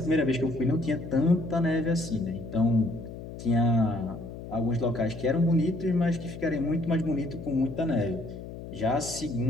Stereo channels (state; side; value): noise; left; hum, 11 dB below the sound